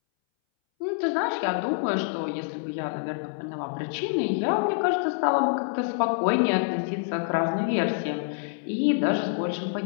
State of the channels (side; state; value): right; silent; 61 dB below the other